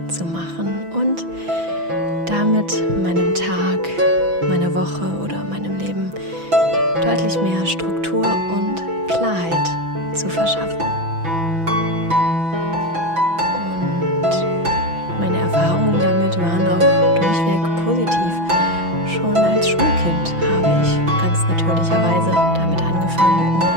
zu machen und damit meinem Tag, meiner Woche oder meinem Leben deutlich mehr Struktur und Klarheit zu verschaffen. Und meine Erfahrungen damit waren auch durchweg positiv. Schon als Schulkind habe ich ganz natürlicherweise damit angefangen,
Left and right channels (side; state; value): left; late; 6.0 ms